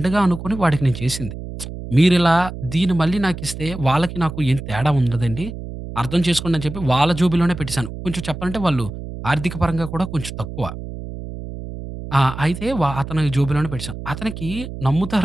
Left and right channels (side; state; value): right; noise; hum, 10 dB below the sound